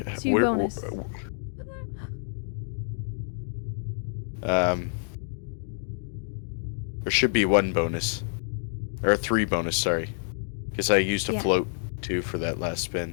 get 2 bonus. There should be 1 bonus. Or 3 bonus, sorry. Because I used a Yeah. float, too, for that last spin.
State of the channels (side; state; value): right; silent; digital silence